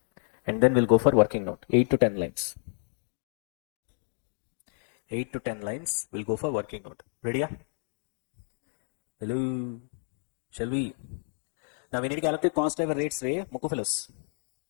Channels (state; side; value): silent; right; 58 dB below the other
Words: and then we'll go for working note. 8 to 10 lines. 8 to 10 lines. We'll go for working note. Ready? Hello. Shall we? Now we need to calculate cost driver rates, Ray. Moku fellows.